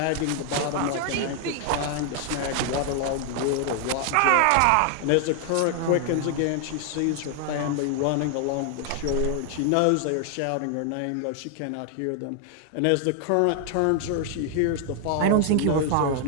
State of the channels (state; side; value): different; both; correlation 0.00